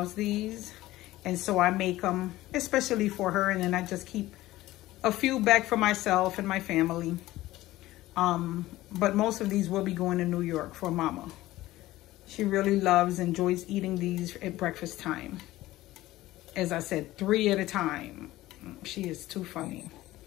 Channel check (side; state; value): right; quieter; 16.6 dB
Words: these, and so I make them especially for her, and then I just keep a few back for myself and my family. But most of these will be going to New York for mama. She really enjoys eating these at breakfast time. As I said, 3 at a time. She is too funny.